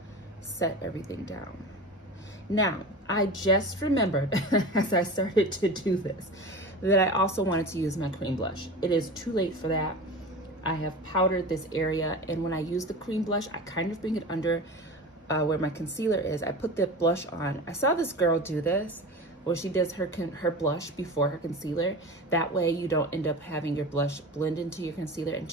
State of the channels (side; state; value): both; normal; correlation 0.32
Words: set everything down. Now, I just remembered as I started to do this, that I also wanted to use my cream blush. It is too late for that. I have powdered this area, and when I use the cream blush, I kind of bring it under where my concealer is. I put the blush on. I saw this girl do this, where she does her blush before her concealer. That way you don't end up having your blush blend into your concealer and